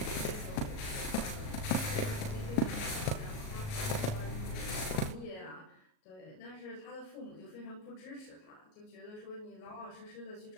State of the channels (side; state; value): right; late; 38 ms